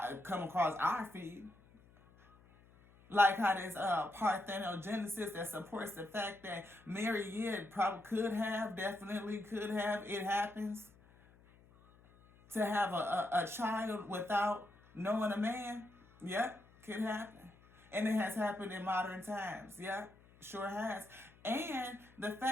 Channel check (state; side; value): noise; left; hum, 26 dB below the sound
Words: come across our feed. Like how there's parthenogenesis that supports the fact that Mary, probably definitely could have, it happens. To have a child without knowing a man, yep, could happen. And it has happened in modern times, yep, sure has. And the